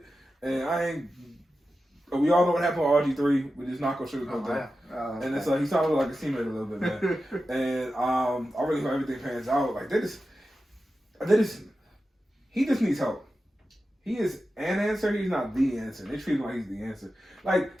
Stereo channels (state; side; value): normal; both; correlation 0.92